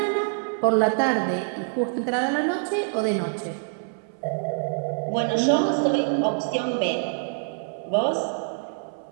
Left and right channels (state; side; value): silent; left; 59 dB below the other